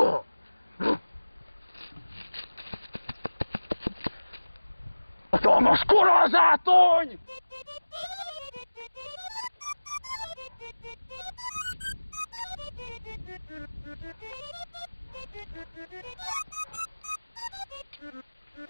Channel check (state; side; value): inverted; both; correlation -1.00